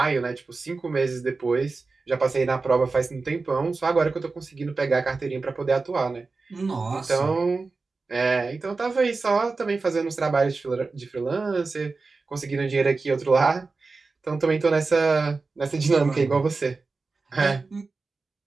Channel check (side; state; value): left; quieter; 4.0 dB